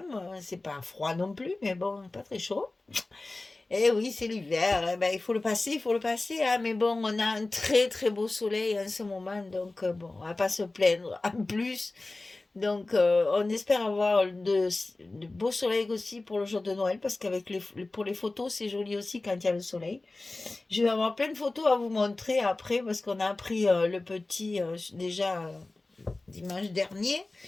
C'est pas froid non plus, mais bon, pas très chaud. Eh oui, c'est l'hiver. Eh ben, il faut le passer. Hein. Mais bon, on a un très très beau soleil en ce moment, donc bon, on va pas se plaindre. En plus, donc on espère avoir de beaux soleils aussi pour le jour de Noël, parce qu'avec pour les photos, c'est joli aussi quand il y a le soleil. Je vais avoir plein de photos à vous montrer après, parce qu'on a appris le petit déjà dimanche dernier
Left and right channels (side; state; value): right; quieter; 3.1 dB